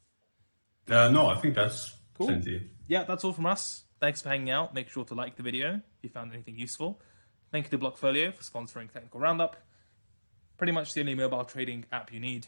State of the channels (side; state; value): both; inverted; correlation -1.00